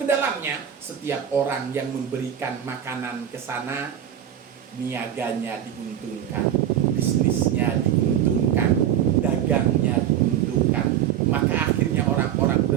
dalamnya. Setiap orang yang memberikan makanan ke sana, niaganya diuntungkan, bisnisnya diuntungkan, dagangnya diuntungkan. Maka akhirnya orang-orang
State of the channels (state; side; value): quieter; left; 10.2 dB